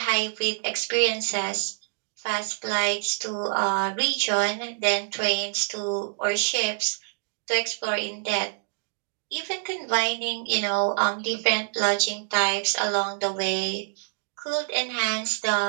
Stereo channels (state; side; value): silent; left; digital silence